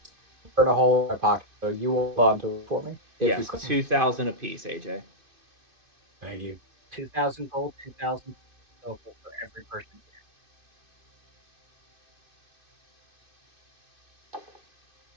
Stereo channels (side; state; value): left; late; 2.5 ms